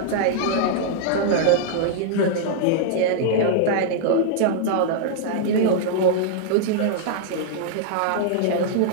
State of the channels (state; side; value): different; both; correlation -0.01